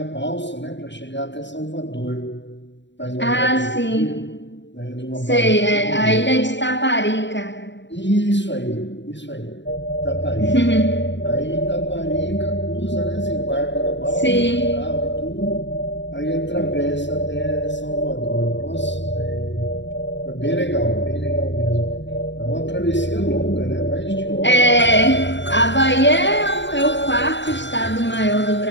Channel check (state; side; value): late; right; 0.53 ms